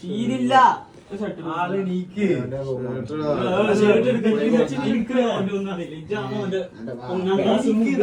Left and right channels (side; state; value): both; identical; correlation 1.00